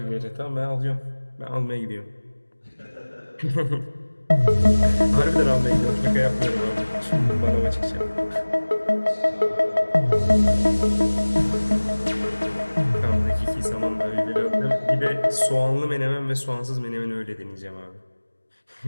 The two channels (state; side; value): inverted; both; correlation -1.00